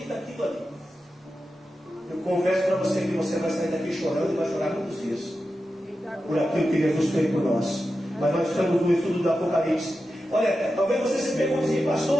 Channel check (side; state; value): both; normal; correlation 0.91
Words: daquilo ali. Eu confesso para você que você vai sair daqui chorando e vai chorar muitos dias por aquilo que Jesus fez por nós. Mas nós estamos no estudo do Apocalipse. Olha, talvez você se pergunte assim,